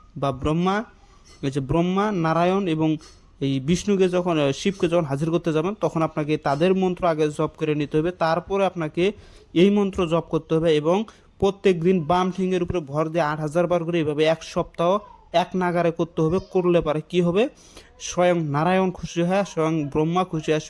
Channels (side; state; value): both; identical; correlation 1.00